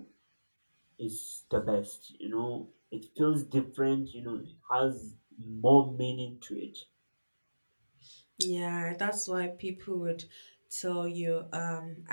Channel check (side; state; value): both; inverted; correlation -1.00